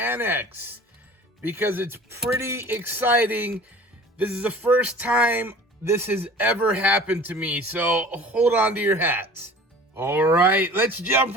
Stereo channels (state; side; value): normal; both; correlation 0.43